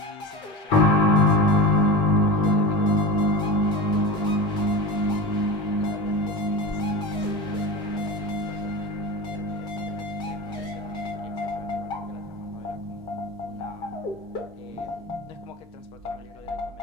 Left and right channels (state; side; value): normal; both; correlation 0.27